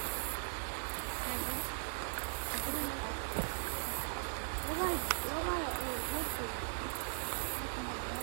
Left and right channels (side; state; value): left; silent; digital silence